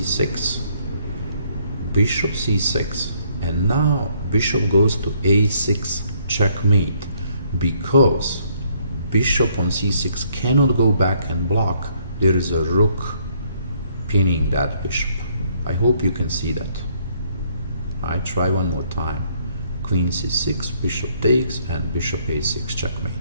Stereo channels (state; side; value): inverted; both; correlation -0.67